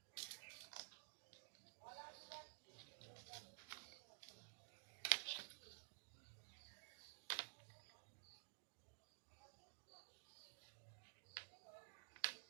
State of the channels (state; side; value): silent; left; digital silence